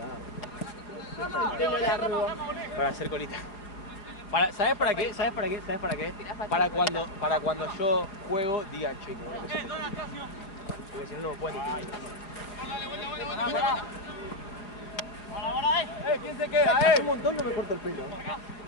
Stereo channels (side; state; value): right; late; 4.9 ms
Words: Para hacer colita. ¿Sabes para qué? Para cuando yo juego, digan che, no, porque si no, no me pueden definir. ¿Quién se queda? Hace un montón no me corto el pelo.